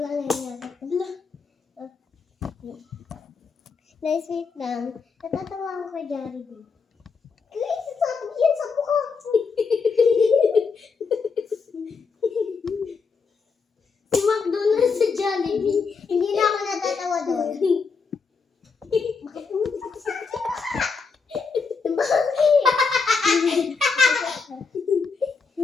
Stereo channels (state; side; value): quieter; right; 5.1 dB